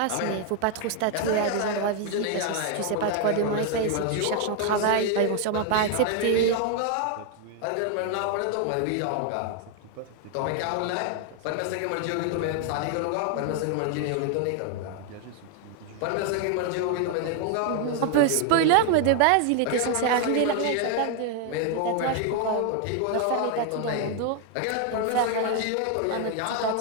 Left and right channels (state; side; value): different; both; correlation 0.00